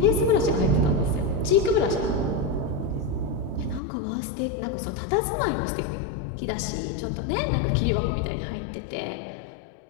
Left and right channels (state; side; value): drops out; right; at 3.8 s